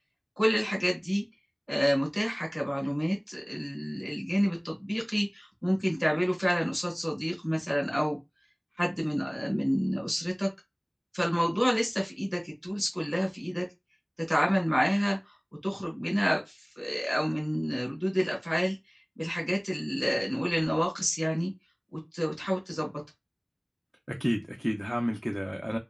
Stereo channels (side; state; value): both; identical; correlation 1.00